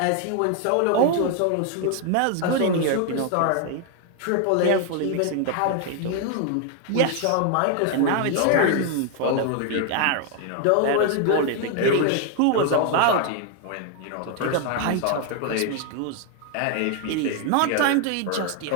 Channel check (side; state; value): both; different; correlation 0.00